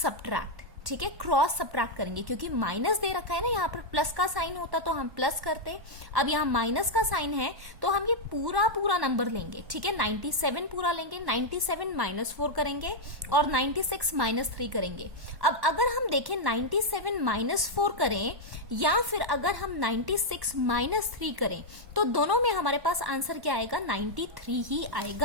ठीक है, क्रॉस सब्ट्रैक्ट करेंगे क्योंकि माइनस दे रखा है ना, यहाँ पर प्लस का साइन होता तो हम प्लस करते। अब यहाँ माइनस का साइन है तो हम ये पूरा नंबर लेंगे, ठीक है। 97 पूरा लेंगे, 97 माइनस 4 करेंगे और 96 माइनस 3 करेंगे। अब अगर हम देखें 97 माइनस 4 करें या फिर अगर हम 96 माइनस 3 करें तो दोनों में हमारे पास आंसर क्या आएगा, 93 ही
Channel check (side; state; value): left; late; 1.1 ms